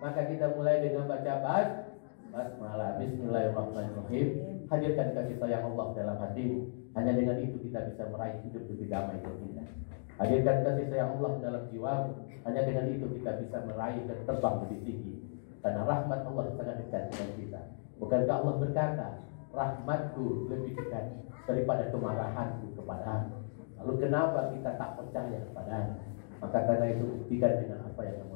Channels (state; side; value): silent; right; digital silence